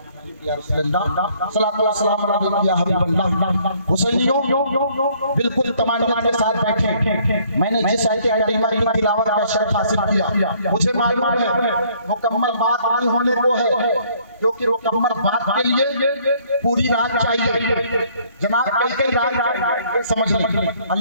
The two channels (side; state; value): both; inverted; correlation -0.62